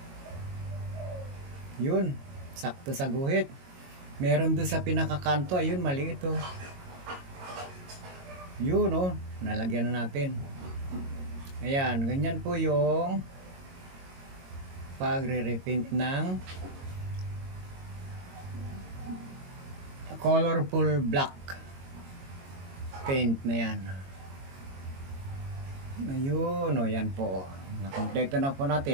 Yun, sakto sa guhit. Meron doon sa pinakakanto, ayun, maliit, oh. Yun, oh, nalagyan na natin. Ayan, ganyan po yung pagre-repaint ng colorful black paint na yan. Ayun, o yan po. Nakompleto na po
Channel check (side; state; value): left; late; 22 ms